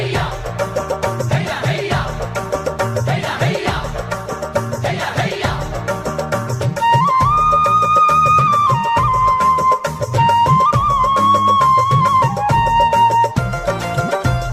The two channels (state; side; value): identical; both; correlation 1.00